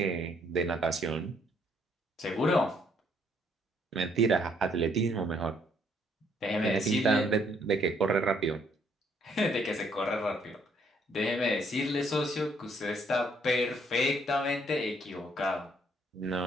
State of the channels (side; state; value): both; normal; correlation 0.67